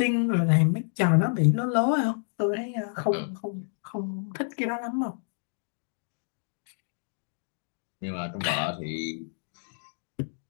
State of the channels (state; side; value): silent; right; digital silence